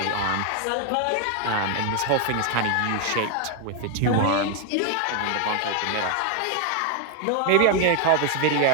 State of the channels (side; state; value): both; different; correlation 0.00